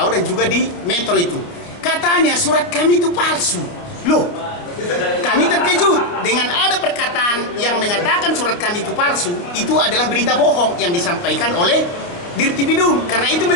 dan juga di Metro itu. Katanya surat kami itu palsu. Loh, kami terkejut dengan ada perkataan yang mengatakan surat kami itu palsu. Itu adalah berita bohong yang disampaikan oleh Dirtipidum, karena itu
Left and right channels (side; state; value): right; late; 29 ms